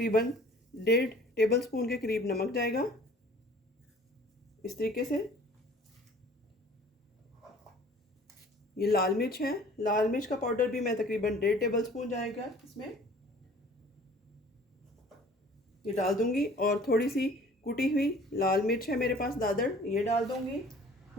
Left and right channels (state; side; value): normal; both; correlation 0.50